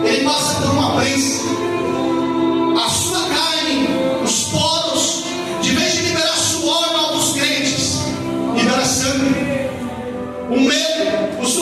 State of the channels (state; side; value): identical; both; correlation 1.00